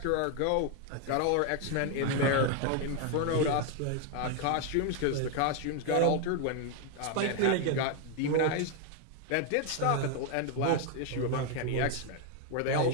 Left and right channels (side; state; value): both; different; correlation 0.01